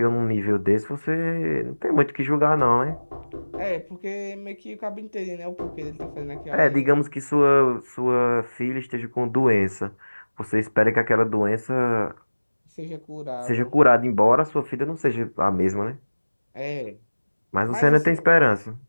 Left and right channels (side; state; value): both; inverted; correlation -1.00